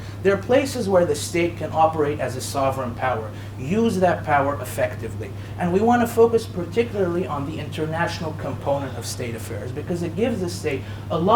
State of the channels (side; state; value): both; identical; correlation 1.00